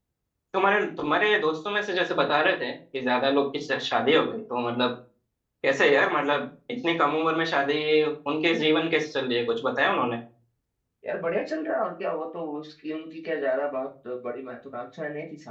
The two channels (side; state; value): both; identical; correlation 1.00